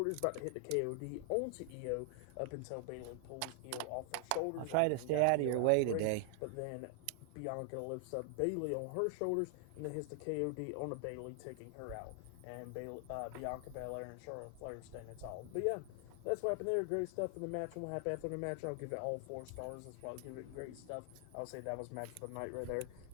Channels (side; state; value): both; different; correlation 0.00